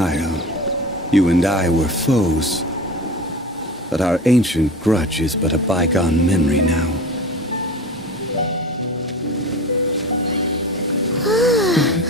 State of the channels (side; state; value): both; normal; correlation 0.33